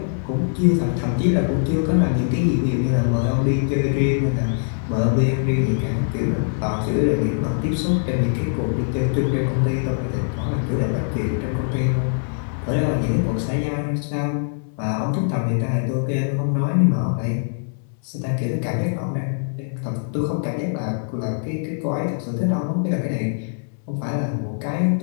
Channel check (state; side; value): silent; right; digital silence